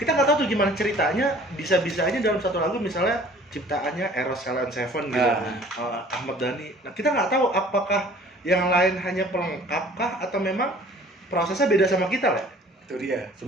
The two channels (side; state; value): both; normal; correlation 0.51